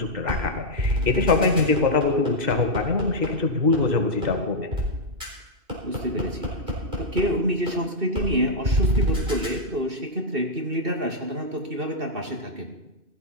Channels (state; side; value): late; left; 2.6 ms